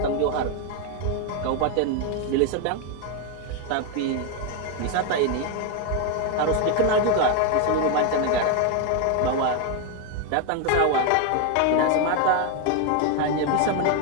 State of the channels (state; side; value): different; both; correlation 0.01